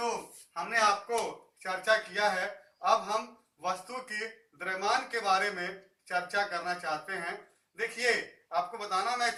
हमने आपको चर्चा किया है। अब हम वस्तु के द्रव्यमान के बारे में चर्चा करना चाहते हैं। देखिए, आपको बताना मैं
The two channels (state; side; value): identical; both; correlation 1.00